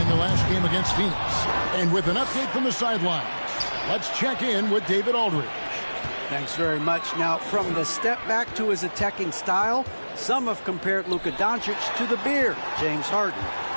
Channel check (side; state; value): both; inverted; correlation -1.00